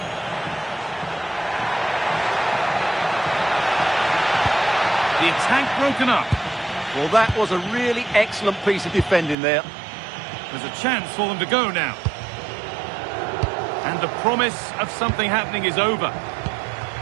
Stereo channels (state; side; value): drops out; left; at 9.3 s